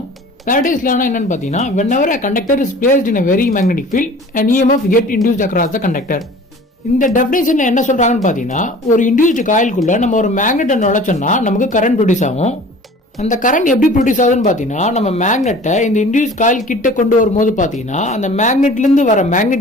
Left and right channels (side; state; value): both; normal; correlation 0.45